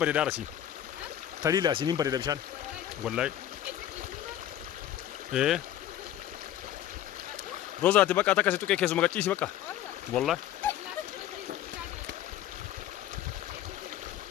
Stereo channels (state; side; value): quieter; right; 11.8 dB